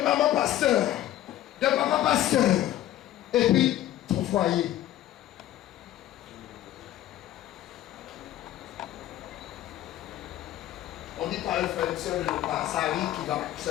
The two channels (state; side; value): quieter; right; 13.4 dB